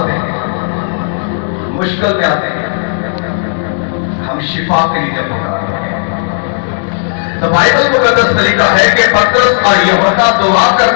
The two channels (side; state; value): right; silent; digital silence